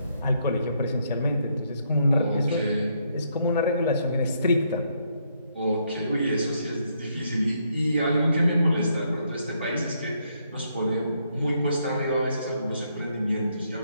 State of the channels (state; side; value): inverted; both; correlation -0.74